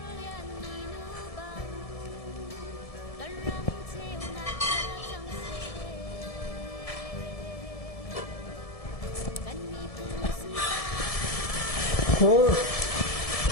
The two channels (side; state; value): right; late; 1.7 ms